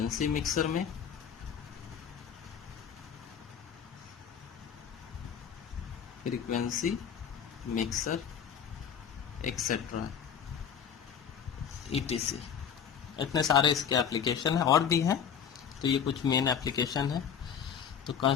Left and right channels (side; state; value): right; quieter; 7.8 dB